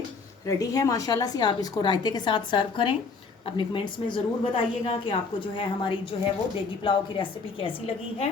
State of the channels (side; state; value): right; quieter; 4.6 dB